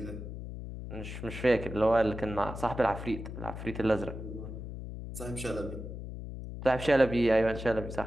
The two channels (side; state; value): left; noise; hum, 9 dB below the sound